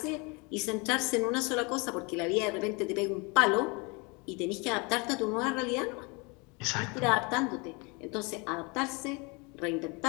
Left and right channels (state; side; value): quieter; right; 29.3 dB